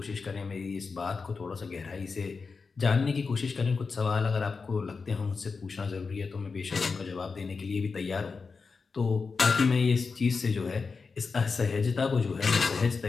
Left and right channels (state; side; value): quieter; right; 4.8 dB